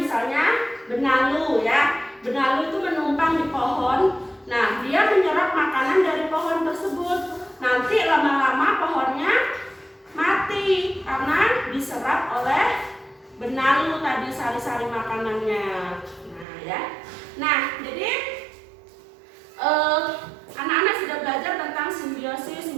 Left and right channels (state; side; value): drops out; left; at 16.4 s